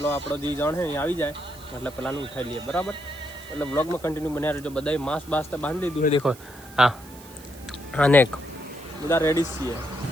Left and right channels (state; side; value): noise; right; hiss, 20 dB below the sound